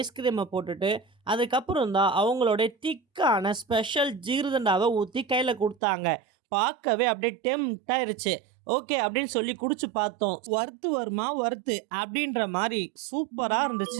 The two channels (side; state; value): left; drops out; at 5.8 s